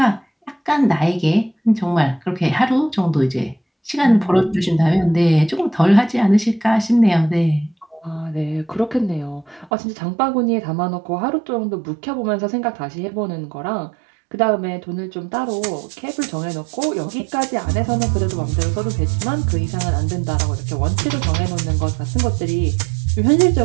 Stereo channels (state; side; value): drops out; left; at 9.7 s